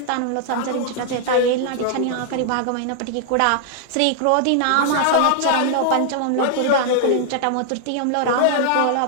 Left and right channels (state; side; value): different; both; correlation -0.01